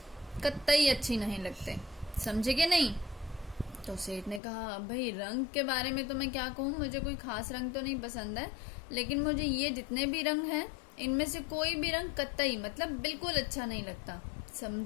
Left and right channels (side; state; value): right; drops out; at 4.4 s